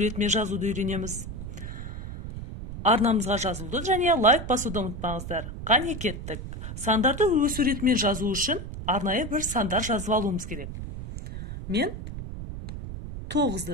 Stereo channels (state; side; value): noise; right; rumble, 8 dB below the sound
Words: ретімен жазуды үйренеміз. Арнамызға жазылуды және лайк басуды ұмытпаңыздар. Қане кеттік. Сандарды өсу ретімен жазу үшін арнайы бір сандар жазып алуымыз керек. Мен